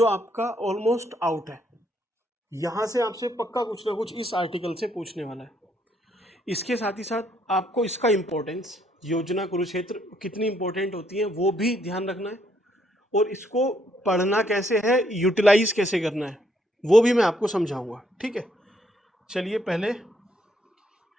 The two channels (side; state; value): both; normal; correlation 0.71